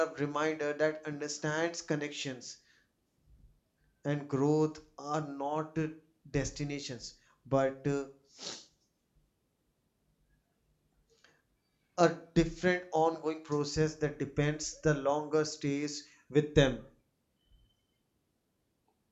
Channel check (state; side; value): identical; both; correlation 1.00